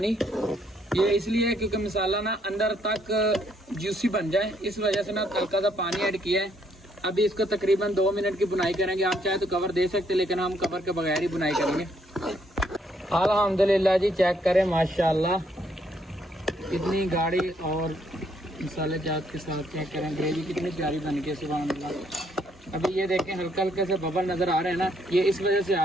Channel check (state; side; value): normal; both; correlation 0.70